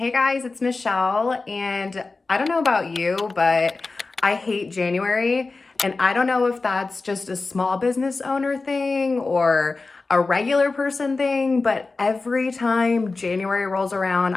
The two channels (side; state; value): right; quieter; 3.8 dB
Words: guys, it's Michelle, and I don't know about you, but I hate January, and I don't know if that's just a small business owner thing or a regular person thing, but every time January rolls around,